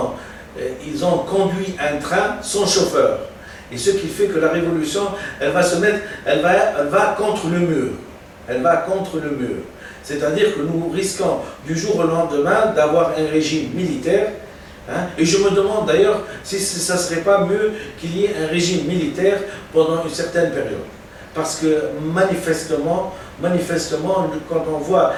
ont conduit un train sans chauffeur. Et ce qui fait que la révolution, elle va contre le mur. Elle va contre le mur. C'est-à-dire que nous risquons du jour au lendemain d'avoir un régime militaire. Hein, et je me demande d'ailleurs si ça ne serait pas mieux qu'il y ait un régime militaire pendant une certaine période. Parce que manifestement, quand on voit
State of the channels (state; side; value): identical; both; correlation 1.00